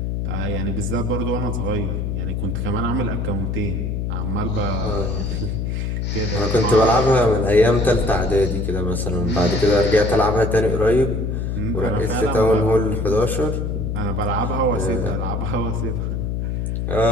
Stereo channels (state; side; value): noise; left; hum, 1 dB below the sound